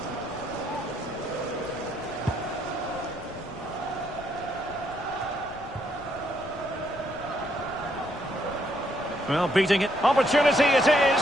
Well, beating it. Opportunity it is.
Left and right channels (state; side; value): noise; left; rumble, 19 dB below the sound